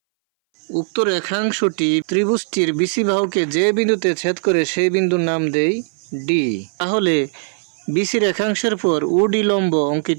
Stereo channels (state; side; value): silent; left; 62 dB below the other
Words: উক্ত রেখাংশটি ত্রিভুজটির বিসি বাহুকে যে বিন্দুতে ছেদ করে সেই বিন্দুর নাম দেই ডি। তাহলে বিসি রেখাংশের পর ও ডি লম্ব